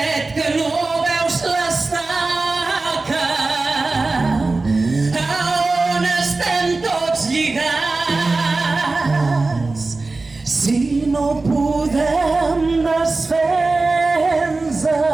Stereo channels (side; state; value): left; quieter; 3.5 dB